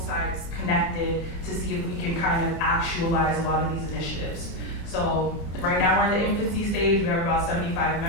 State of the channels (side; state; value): right; late; 30 ms